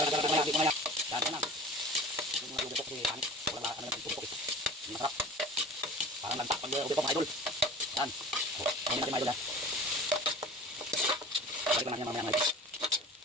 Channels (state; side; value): normal; both; correlation 0.39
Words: ko na yan. Dahil ko na. Yung mga lubok si Panik. Walang ano yung tupok. Hindi masarap. Parang nagtak pag lubok mga idol. Yan. Ayun natin mga idol ha. Balik lang natin mamaya mga idol.